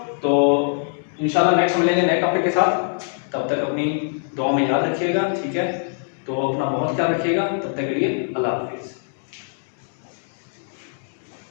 तो इंशाल्लाह नेक्स्ट मिलेंगे नए टॉपिक के साथ, तब तक अपनी दुआ में याद रखिएगा। ठीक है, तो अपना बहुत ख्याल रखिएगा, तब तक के लिए अल्लाह हाफिज।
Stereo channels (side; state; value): right; silent; digital silence